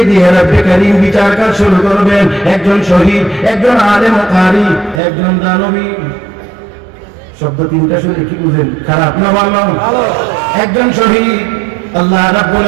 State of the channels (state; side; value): drops out; left; at 5.0 s